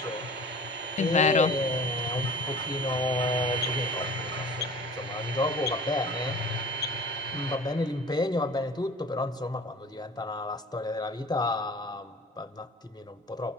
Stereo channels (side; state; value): both; normal; correlation 0.43